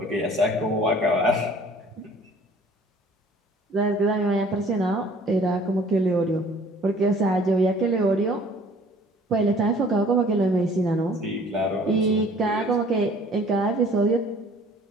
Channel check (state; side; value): normal; both; correlation 0.52